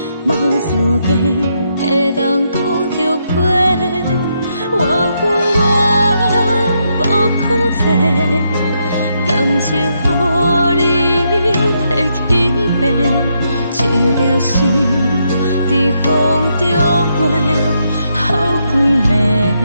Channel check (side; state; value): both; inverted; correlation -0.79